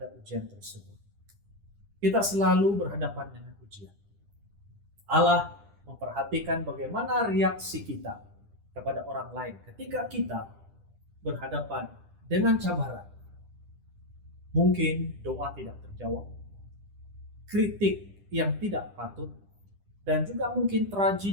ujian tersebut. Kita selalu berhadapan dengan ujian. Allah memperhatikan bagaimana reaksi kita kepada orang lain ketika kita berhadapan dengan cabaran. Mungkin doa tidak terjawab, kritik yang tidak patut, dan juga mungkin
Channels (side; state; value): left; late; 10 ms